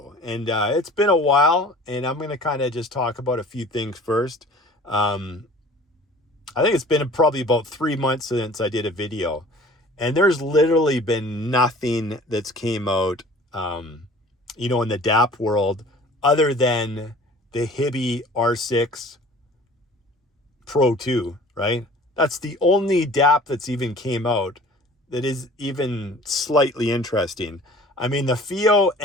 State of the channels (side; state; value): both; normal; correlation 0.47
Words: And it's been a while, and I'm going to kind of just talk about a few things first. I think it's been probably about 3 months since I did a video, and there's literally been nothing that's came out, in the DAP world other than the Hibby R6 Pro 2, right? That's the only DAP that's even came out that is even slightly interesting. I mean, the FIO